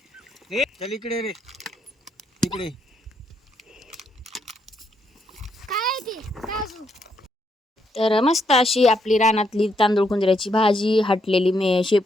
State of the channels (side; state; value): both; normal; correlation 0.77